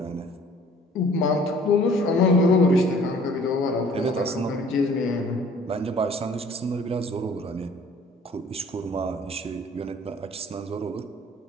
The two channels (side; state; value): both; normal; correlation 0.53